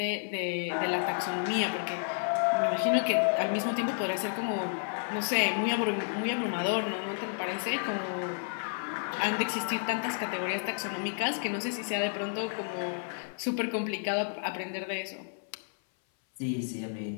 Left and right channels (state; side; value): silent; right; 57 dB below the other